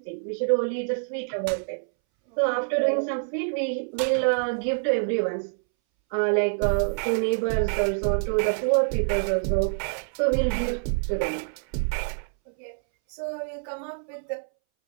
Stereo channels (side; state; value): left; silent; 61 dB below the other